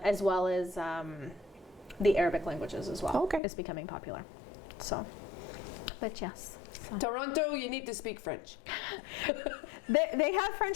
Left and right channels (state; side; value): drops out; right; at 3.4 s